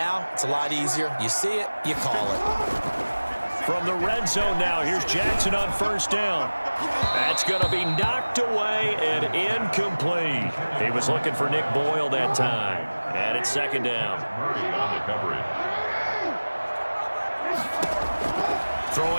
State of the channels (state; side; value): inverted; both; correlation -1.00